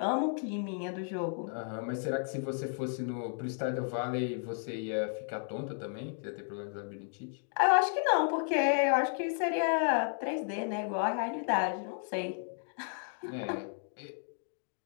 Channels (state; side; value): silent; right; 56 dB below the other